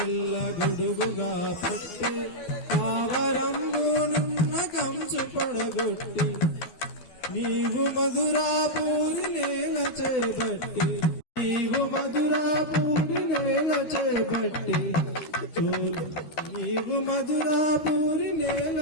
గొడుగుగా పట్టి పావరంబు నున్న కంచు పడగొట్టి నీవు మధురాపూరి నేల చేపట్టి నీవు మధురాపూరి నేల చేపట్టి నీవు మధురాపూరి నేల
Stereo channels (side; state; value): right; late; 12 ms